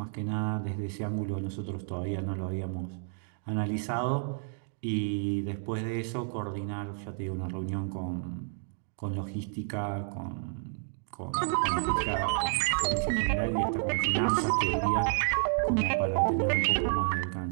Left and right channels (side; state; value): left; silent; 57 dB below the other